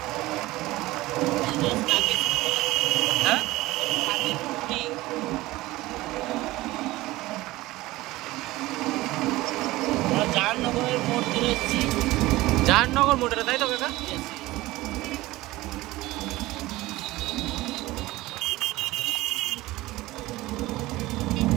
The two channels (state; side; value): quieter; left; 18.5 dB